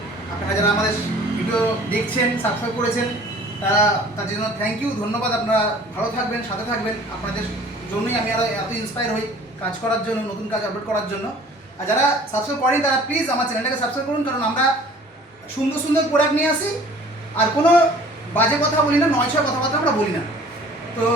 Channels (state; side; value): normal; both; correlation 0.49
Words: আপনারা যারা আমাদের ভিডিও দেখছেন, সাবস্ক্রাইব করেছেন, তার জন্য থ্যাংক ইউ, ধন্যবাদ। আপনারা ভালো থাকবেন, সাথে থাকবেন, আপনাদের জন্যই আমি আরও এত ইন্সপায়ার হই কাজ করার জন্য, নতুন কাজ আপলোড করার জন্য। আর যারা সাবস্ক্রাইব করেন তারা প্লিজ আমার চ্যানেলটাকে সাবস্ক্রাইব করুন, কারণ আমরা সুন্দর সুন্দর প্রোডাক্ট নিয়ে আসি, আর কোনো বাজে কথা বলি না, 9-6 কথাবার্তা আমরা বলি না। তো